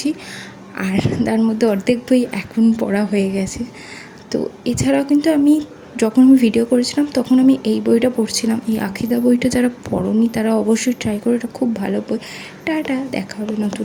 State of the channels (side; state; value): both; identical; correlation 1.00